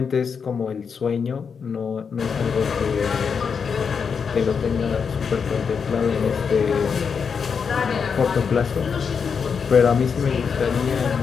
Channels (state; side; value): quieter; right; 6.2 dB